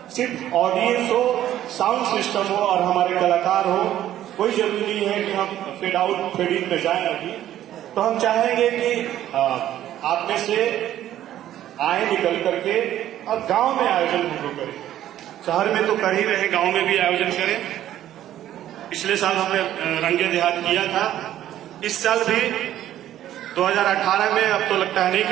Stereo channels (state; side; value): quieter; left; 12.3 dB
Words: सिर्फ ऑडियंस हो, साउंड सिस्टम हो और हमारे कलाकार हो, कोई जरूरी नहीं है कि हम फेड आउट फेड इन में जाए। अभी तो हम चाहेंगे कि आप में से आए निकल करके और गांव में आयोजन हम लोग करें। शहर में तो कर ही रहे, गांव में भी आयोजन करें। पिछले साल हमने रंगे देहात किया था, इस साल भी 2018 में, अब तो लगता है नहीं